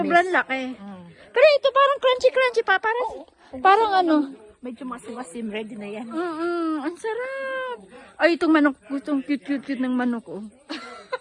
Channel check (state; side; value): identical; both; correlation 1.00